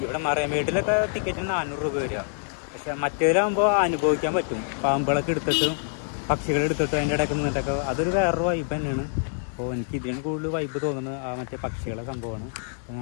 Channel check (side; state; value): right; silent; 61 dB below the other